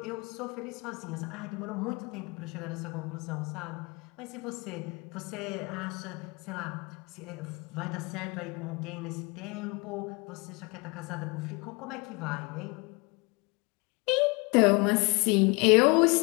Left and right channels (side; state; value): right; quieter; 28.7 dB